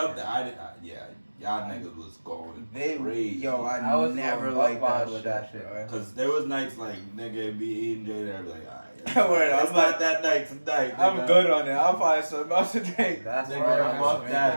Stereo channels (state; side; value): inverted; both; correlation -1.00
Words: fucking- that, yeah, y'all niggas was going They, crazy. yo, I I was never going liked buck that wild with shit. that shit. bro. Cause there was nights like nigga be eating J and I'd be like, alright. Word, It's I'm not like- that night tonight. I'm nigga. good on it. I'll find something else to take. That's Nigga, why I'm I off was